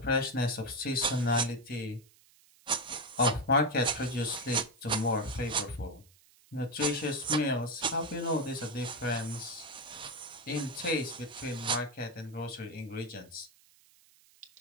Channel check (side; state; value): right; noise; hiss, 28 dB below the sound